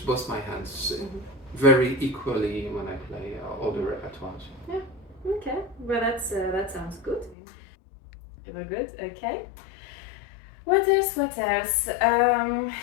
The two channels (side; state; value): right; drops out; at 7.4 s